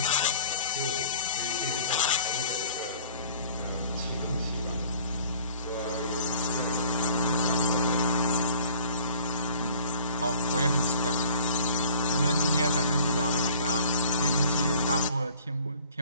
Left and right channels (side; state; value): both; inverted; correlation -0.50